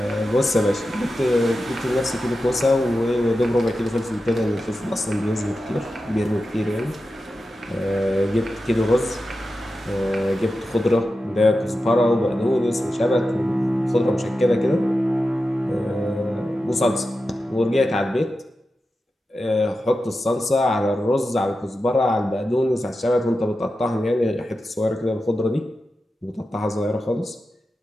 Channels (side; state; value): both; normal; correlation 0.91